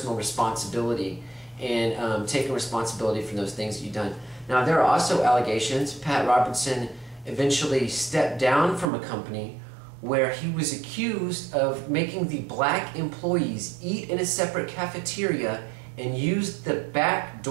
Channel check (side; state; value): left; drops out; at 8.8 s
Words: responsibility and taking responsibility for those things that you've done. Now, there are also allegations. Pat Robertson eventually stepped down from a company where he was accused of making the black employees eat in a separate cafeteria and used the back